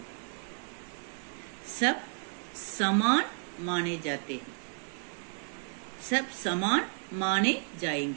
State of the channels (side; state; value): left; silent; 56 dB below the other